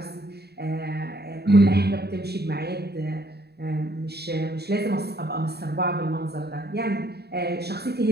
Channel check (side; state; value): left; late; 0.47 ms